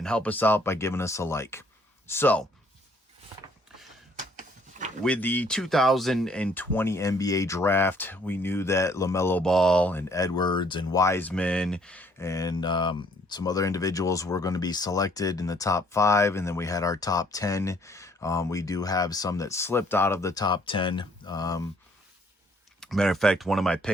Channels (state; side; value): normal; both; correlation 0.63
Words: help us out by giving us a like. So, with the 2020 NBA draft, we knew that LaMelo Ball and Edwards and Wiseman and some other individuals were going to be selected in the top 5, and then we had our top 10. We do have some that slipped out of the top 10. Matter of fact, one of my